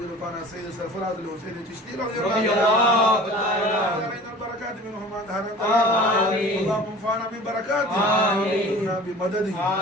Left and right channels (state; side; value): normal; both; correlation 0.42